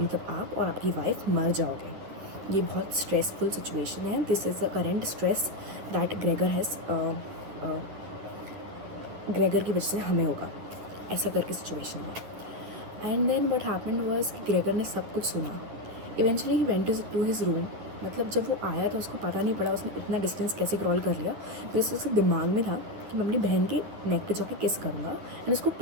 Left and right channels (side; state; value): left; late; 10 ms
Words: आप और आपकी वाइफ मर जाओगे। ये बहुत स्ट्रेसफुल सिचुएशन है। This is the current stress that Gregor has, Gregor की वजह से हमें होगा, ऐसा करके सिचुएशन है। And then what happened was कि ग्रेगर ने सब कुछ सुना। Eventually he went to his room. मतलब जब वो आया तो उसको पता नहीं पड़ा उसने इतना डिस्टेंस कैसे क्रॉल कर लिया। तो इससे उसके दिमाग में था कि मैं अपनी बहन के नेक पे जाके किस करूँगा एंड उसको